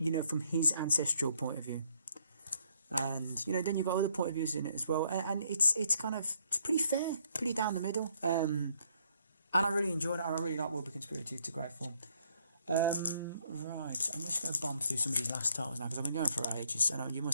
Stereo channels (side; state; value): both; inverted; correlation -0.69